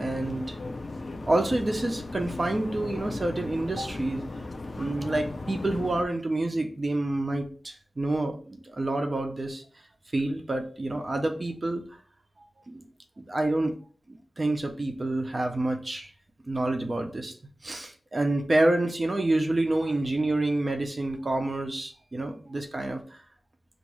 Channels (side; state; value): both; normal; correlation 0.96